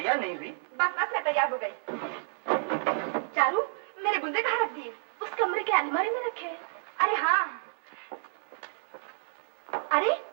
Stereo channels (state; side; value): silent; left; digital silence